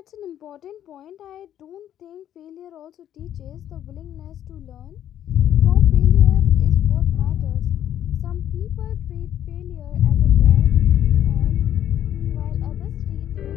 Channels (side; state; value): right; quieter; 10.9 dB